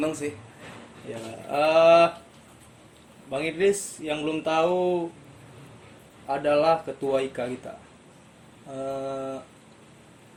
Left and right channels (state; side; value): identical; both; correlation 1.00